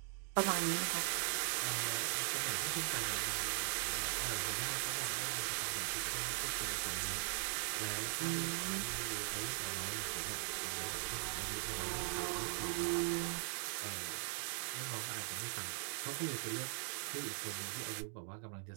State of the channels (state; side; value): silent; left; 51 dB below the other